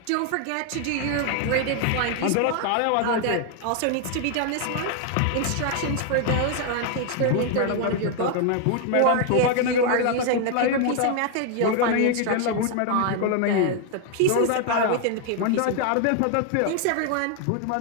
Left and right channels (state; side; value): different; both; correlation 0.01